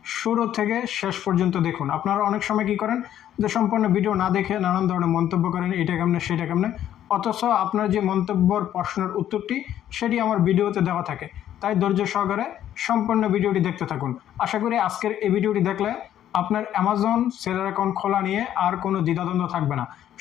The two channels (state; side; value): quieter; right; 11.2 dB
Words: শুরু থেকে শেষ পর্যন্ত দেখুন। আপনারা অনেক সময় কী করেন যে সম্পূর্ণ ভিডিও না দেখে নানান ধরনের মন্তব্য করেন, এটা কেমনে সেটা কেমনে, অথচ আপনার যে মন্তব্যর প্রশ্নের উত্তরটি সেটি আমার ভিডিওতে দেওয়া থাকে। তাই ধৈর্য সহকারে সম্পূর্ণ ভিডিওটি দেখতে থাকুন। আশা করি আজকের এই ভিডিওটি দেখলে আপনার অ্যামাজন সেলার অ্যাকাউন্ট খোলা নিয়ে আর কোনো দ্বিধাদ্বন্দ্ব থাকবে না।